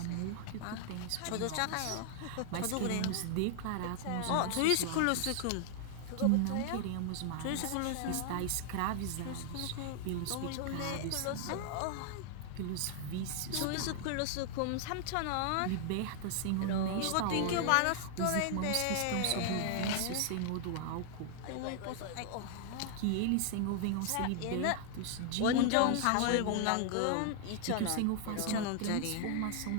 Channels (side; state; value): both; different; correlation 0.00